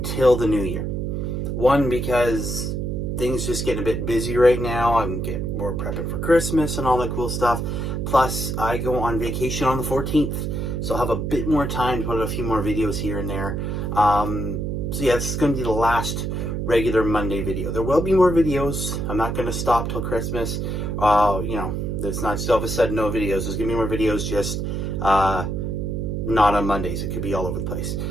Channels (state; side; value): noise; right; hum, 2 dB below the sound